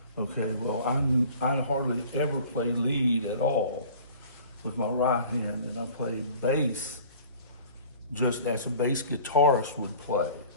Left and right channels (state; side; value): inverted; both; correlation -0.47